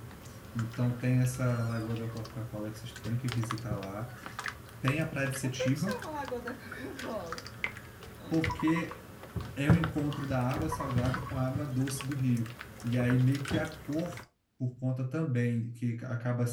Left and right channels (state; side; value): identical; both; correlation 1.00